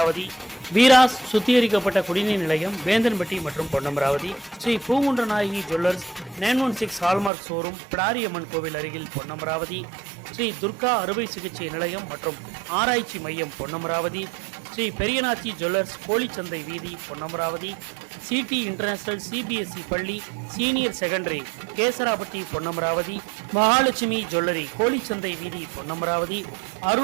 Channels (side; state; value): left; drops out; at 7.3 s